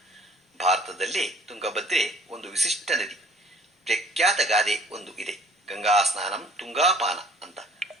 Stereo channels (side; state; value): both; normal; correlation 0.53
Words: ಭಾರತದಲ್ಲಿ ತುಂಗಭದ್ರೆ ಒಂದು ವಿಶಿಷ್ಟ ನದಿ. ಪ್ರಖ್ಯಾತ ಗಾದೆ ಒಂದು ಇದೆ, ಗಂಗಾ ಸ್ನಾನಂ ತುಂಗಾಪಾನ ಅಂತ.